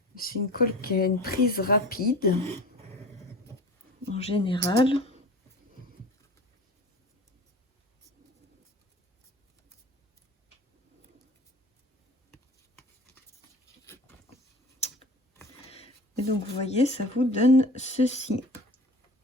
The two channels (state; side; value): normal; both; correlation 0.38